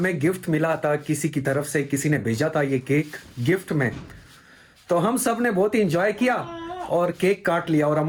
गिफ्ट मिला था किसी की तरफ से, किसी ने भेजा था ये केक गिफ्ट में। तो हम सब ने बहुत ही एंजॉय किया और केक काट लिया। और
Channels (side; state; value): both; identical; correlation 1.00